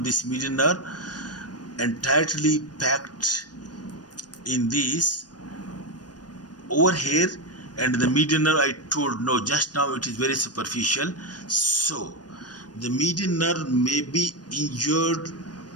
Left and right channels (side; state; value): right; late; 0.69 ms